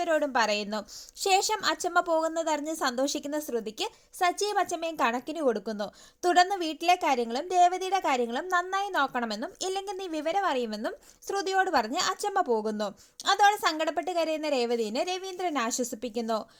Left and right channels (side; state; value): both; identical; correlation 1.00